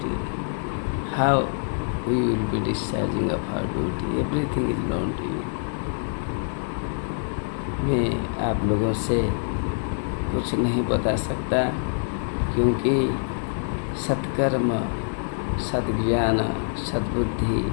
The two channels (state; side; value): silent; right; 58 dB below the other